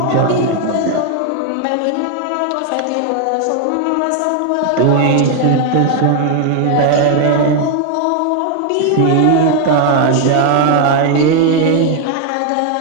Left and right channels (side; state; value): both; different; correlation 0.00